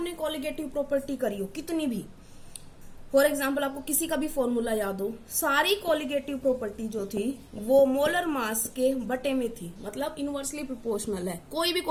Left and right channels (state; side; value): identical; both; correlation 1.00